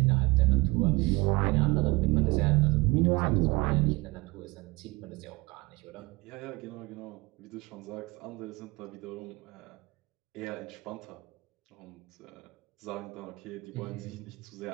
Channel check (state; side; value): quieter; left; 23.7 dB